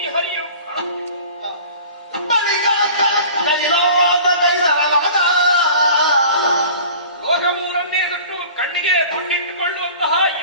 ಬಳಿಕ ಕೈಲಾದ ಕೈಲಾದ ಲೋಕಮೂರನ್ನೇ ಬಿಟ್ಟು ಕಣ್ಣಿಗೆ ಗುಂಡಿಟ್ಟುಕೊಳ್ಳುವಂತಹ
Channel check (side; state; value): both; inverted; correlation -0.43